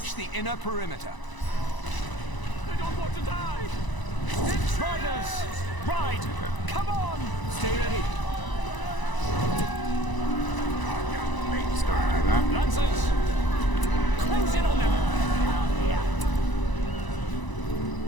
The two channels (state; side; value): late; right; 1.0 ms